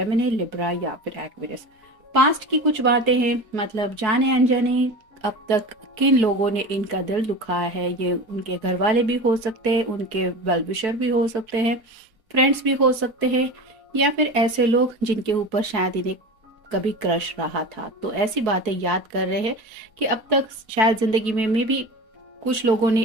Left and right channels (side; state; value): left; late; 4.6 ms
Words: Libra या फिर एक्वेरियस। पास्ट की कुछ बातें हैं, मतलब जाने अनजाने अब तक किन लोगों ने इनका दिल दुखाया है। ये उनके घर वाले भी हो सकते हैं, उनके वेल विशर भी हो सकते हैं, फ्रेंड्स भी हो सकते हैं, या फिर ऐसे लोग जिनके ऊपर शायद इन्हें कभी क्रश रहा था। तो ऐसी बातें याद कर रहे हैं कि अब तक शायद जिंदगी में भी कुछ लोगों ने